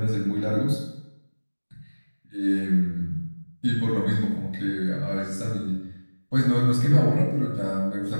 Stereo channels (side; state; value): both; inverted; correlation -1.00